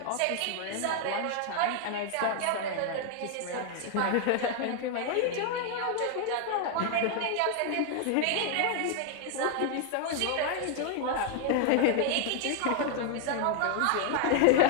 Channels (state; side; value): different; both; correlation 0.00